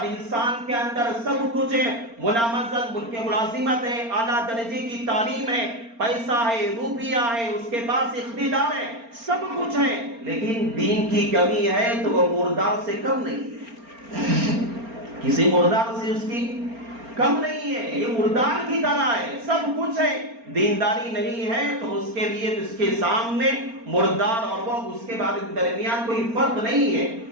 انسان کے اندر سب کچھ ہے، ملامت ملازمت ہے، اعلیٰ درجے کی تعلیم ہے، پیسہ ہے، روپیہ ہے، اس کے پاس اقتدار ہے، سب کچھ ہے، لیکن دین کی کمی ہے تو وہ مردار سے کم نہیں ہے، کسی مردار سے اس کی کم نہیں ہے، یہ مردار کی طرح ہے، سب کچھ ہے، دینداری نہیں ہے تو اس کے لیے اس کے سامنے مردار اور وہ اس کے درمیان کوئی فرق نہیں ہے۔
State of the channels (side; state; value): left; late; 4.3 ms